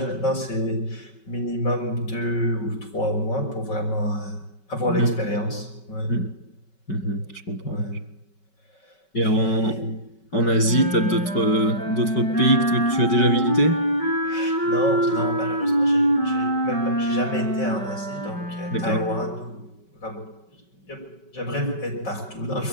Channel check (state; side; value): late; right; 5.3 ms